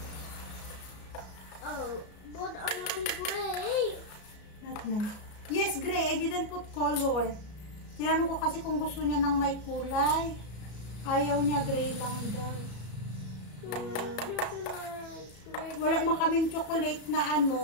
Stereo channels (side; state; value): right; late; 33 ms